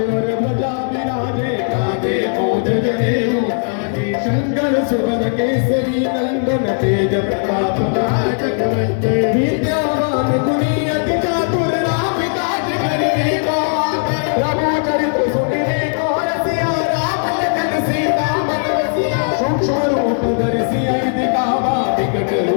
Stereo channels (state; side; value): silent; right; digital silence